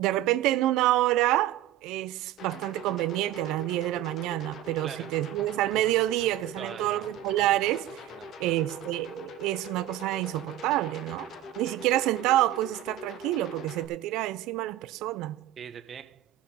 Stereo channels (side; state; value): left; quieter; 13.4 dB